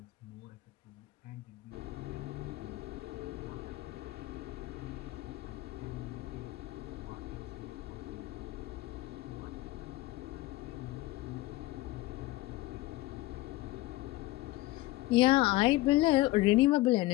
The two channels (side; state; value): right; quieter; 18.5 dB